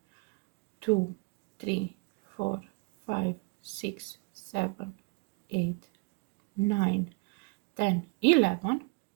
2, 3, 4, 5, 6, 7, 8, 9, 10, 11.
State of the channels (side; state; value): left; quieter; 28.2 dB